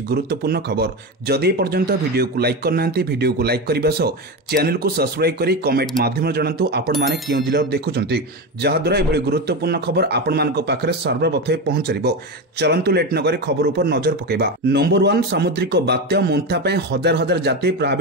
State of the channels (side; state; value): both; normal; correlation 0.18